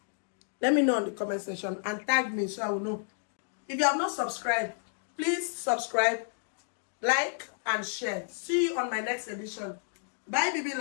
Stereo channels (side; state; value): right; silent; digital silence